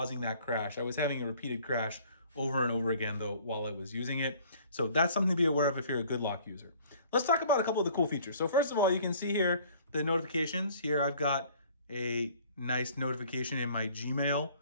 that crash. I was having a repeated crash over and over again though while I was using it. So that's something to be aware of if you're a Good Lock user. Let's talk about a couple of the cool features. So first of all, you can see here the notifications. Here I've got a nice notification in my Gmail.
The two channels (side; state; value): both; inverted; correlation -0.54